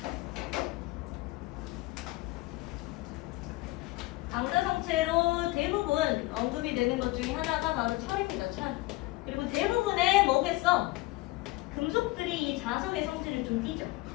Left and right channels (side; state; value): right; quieter; 20.7 dB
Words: 강자성체로 대부분 언급이 되는 것 중에 하나가 바로 철입니다. 철. 그리고 대부분의 뭐겠어? 금속들이 이 자석의 성질을 좀 띠죠.